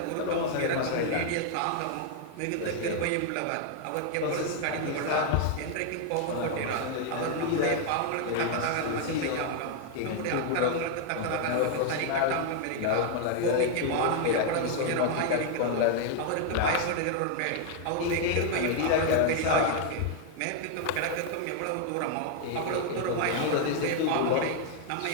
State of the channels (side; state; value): both; different; correlation 0.00